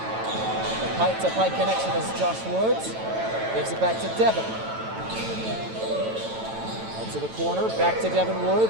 The Pike-to-Pike connection is Josh Woods. Gives it back to Devin. Up to the corner, back to Devin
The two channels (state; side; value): late; left; 9.0 ms